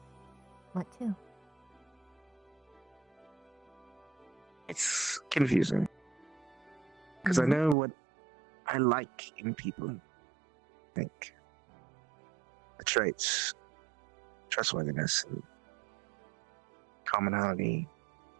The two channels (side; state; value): left; drops out; at 7.8 s